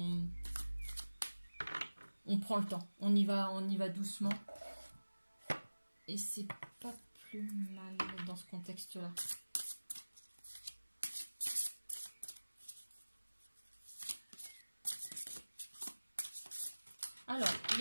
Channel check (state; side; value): inverted; both; correlation -1.00